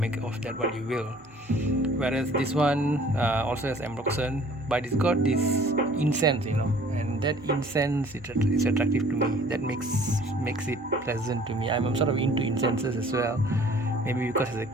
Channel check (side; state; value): both; normal; correlation 0.53